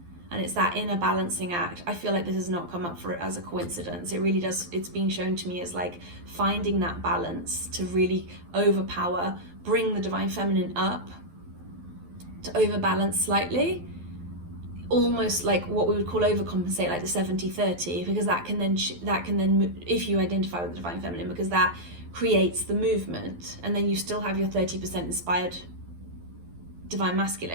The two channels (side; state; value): left; late; 12 ms